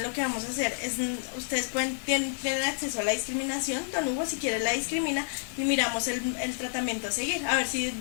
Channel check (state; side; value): silent; right; digital silence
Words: lo que vamos a hacer es, ustedes tienen acceso a la discriminación. Don Hugo, si quiere, la discrimina y miramos el tratamiento a seguir. A ver si